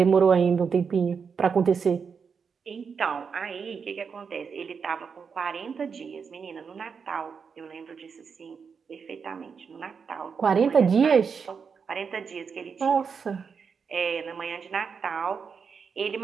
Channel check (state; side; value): quieter; left; 6.0 dB